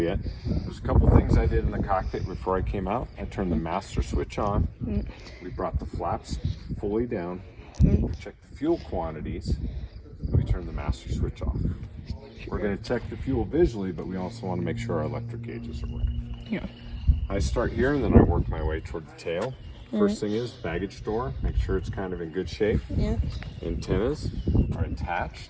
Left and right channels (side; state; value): both; identical; correlation 1.00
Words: There's a couple things I did in the cockpit before I came out. I turned the master switch on. We brought the flaps fully down. Checked the fuel quantities. And we turned the master switch off. We're going to check the fuel visually, but we also want to make sure our electric gauges are working. Yeah. I start here and then I work my way toward the tail. First thing is baggage door. Make sure it's kind of in good shape. Yeah. Antennas are